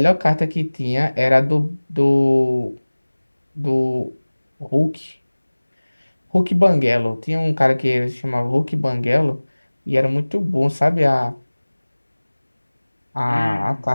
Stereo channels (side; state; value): both; inverted; correlation -1.00